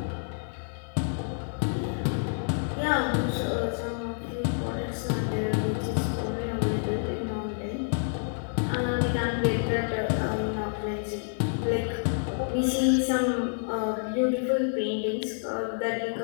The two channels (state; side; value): silent; right; digital silence